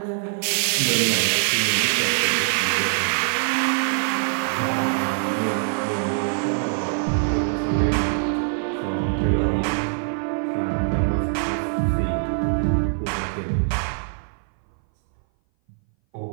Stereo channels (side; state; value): left; silent; 59 dB below the other